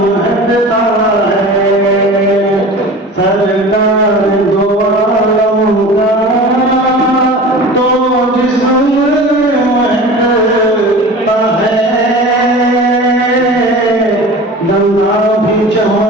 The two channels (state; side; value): normal; both; correlation 0.37